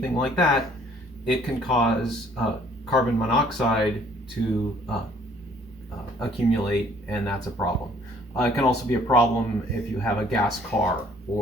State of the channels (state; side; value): normal; both; correlation 0.59